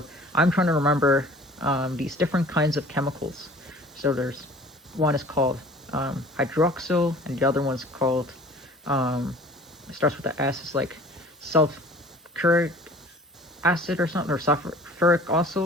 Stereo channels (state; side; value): normal; both; correlation 0.47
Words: I'm trying to remember these different kinds of chemicals. So there's one is called hydroxyl, and the other one's called, it starts with the S, it's like sulfuric acid or something, or sulfuric